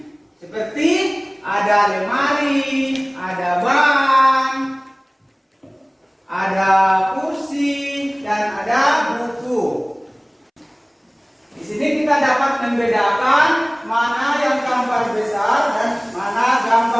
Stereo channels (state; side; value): identical; both; correlation 1.00